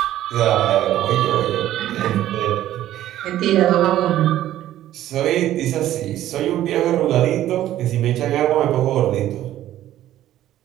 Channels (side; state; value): left; quieter; 13.1 dB